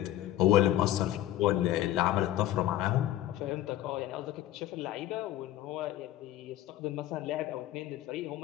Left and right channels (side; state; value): right; quieter; 13.7 dB